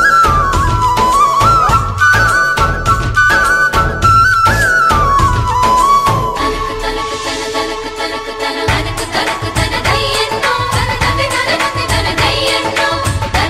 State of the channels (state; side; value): identical; both; correlation 1.00